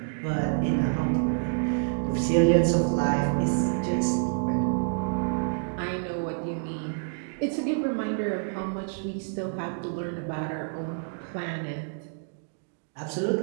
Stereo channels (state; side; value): silent; left; digital silence